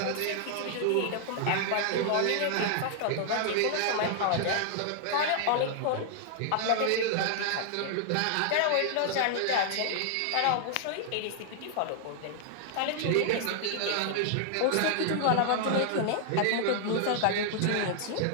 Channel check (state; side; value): different; both; correlation 0.00